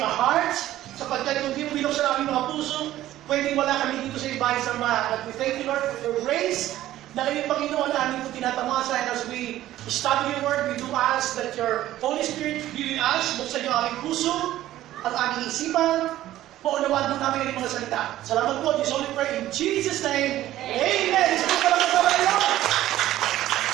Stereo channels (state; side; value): quieter; left; 14.1 dB